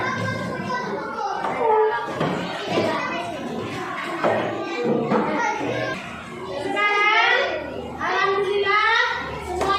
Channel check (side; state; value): both; identical; correlation 1.00